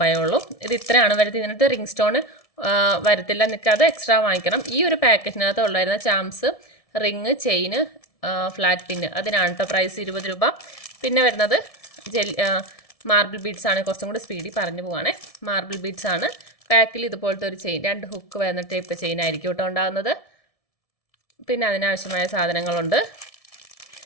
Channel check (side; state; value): right; late; 1.7 ms